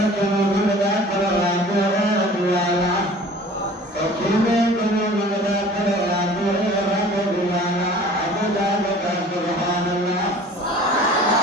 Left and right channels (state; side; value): normal; both; correlation 0.46